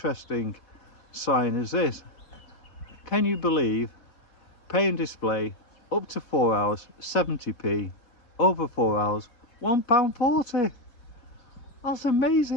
sign is this. Can you believe pay and display up to 4 hours 70p, over 4 hours £1.40? That's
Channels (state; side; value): late; right; 4.0 ms